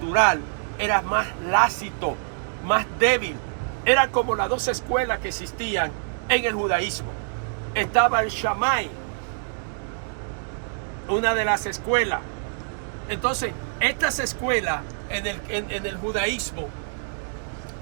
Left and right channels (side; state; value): left; silent; digital silence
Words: era más lácito, más débil. Eran como las 2 escuelas que existían en el judaísmo. Estaba el Shammai, una de las escuelas. Entonces, estas escuelas en el judaísmo